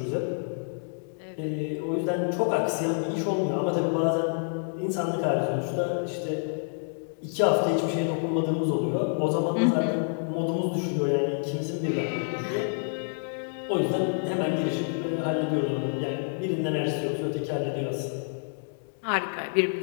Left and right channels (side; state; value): right; silent; digital silence